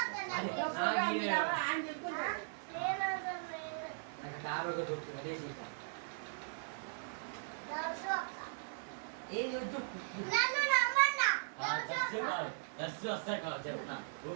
నాకు టాబ్లెట్ దొరుకుతుంది అదే సీత ఏం చెప్పు దర్శి వస్తాయి కాదు చెప్తున్నా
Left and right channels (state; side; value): silent; left; 52 dB below the other